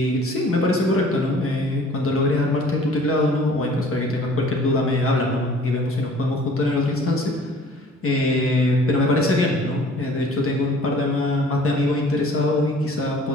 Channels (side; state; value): both; normal; correlation 0.51